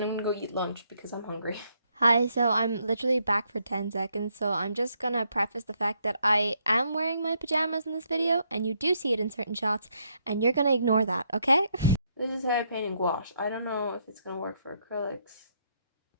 I'm gonna go eat lunch because I'm hungry. Hi, so I'm literally back for 10 seconds, so I'm just gonna preface the fact that I am wearing my pajamas in this video, and you do see it in certain shots, and you're gonna ignore that, okay? This is how I paint in gouache. I don't know if it's gonna work for acrylics,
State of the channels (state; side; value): inverted; both; correlation -0.74